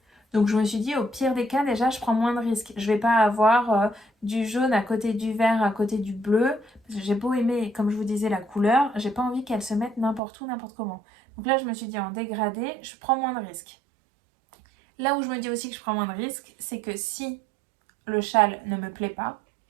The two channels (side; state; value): left; drops out; at 10.2 s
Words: Donc je me suis dit, au pire des cas, déjà, je prends moins de risques. Je vais pas avoir du jaune à côté du vert, à côté du bleu. Parce que j'ai beau aimer, comme je vous disais, la couleur, j'ai pas envie qu'elle se mette n'importe où, n'importe comment. Donc là, je me suis dit, en dégradé, je prends moins de risques. Là où je me dis aussi que je prends moins de risques, c'est que si le châle ne me plaît pas,